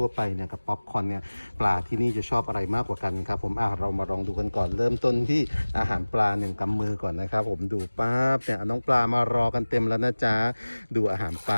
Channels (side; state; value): both; inverted; correlation -1.00